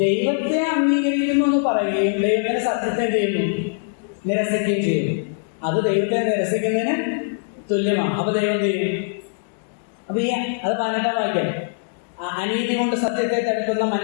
ദൈവത്തെ അംഗീകരിക്കുന്നു എന്ന് പറയുകയും ദൈവത്തിന്റെ സത്യത്തെ ചെയ്യുന്നു, നിരസിക്കുകയും ചെയ്യുന്നു. അത് ദൈവത്തെ നിരസിക്കുന്നതിന് തുല്യമാണ്. അപ്പൊ ദൈവം ചെയ്യും. അപ്പൊ അത് 18-ാം വാക്യം, അനീതി കൊണ്ട് സത്യത്തെ തടുക്കുന്ന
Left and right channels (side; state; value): right; silent; digital silence